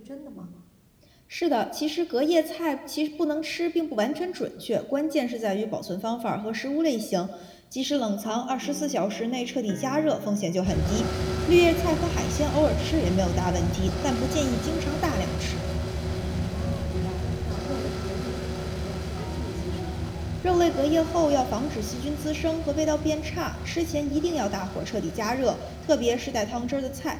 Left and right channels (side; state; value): both; identical; correlation 1.00